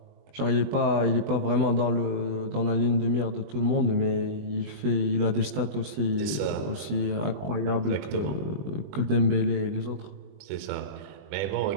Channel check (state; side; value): late; left; 20 ms